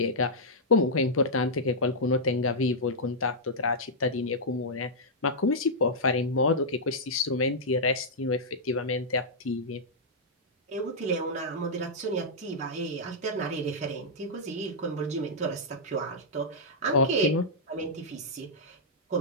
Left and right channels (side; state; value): both; normal; correlation -0.09